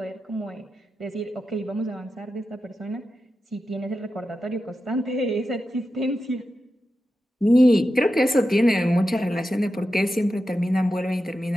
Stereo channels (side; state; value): both; normal; correlation 0.90